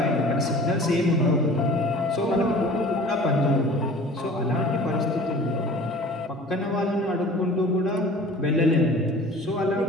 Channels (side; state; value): both; normal; correlation 0.44